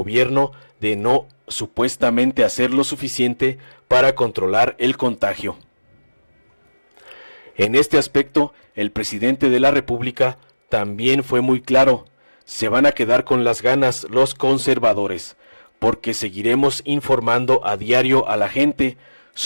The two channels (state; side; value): inverted; both; correlation -1.00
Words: de no supuestamente hacer lo suficiente para controlar el contagio. En este aspecto, el presidente de la República también fue muy claro: se van a quedar con las ganas los conservadores, porque seguiremos informando a diario a la gente